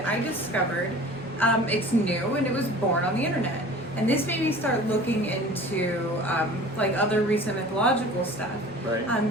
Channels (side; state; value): both; normal; correlation 0.43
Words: I discovered it's new and it was born on the internet. And this made me start looking into like other recent mythological stuff.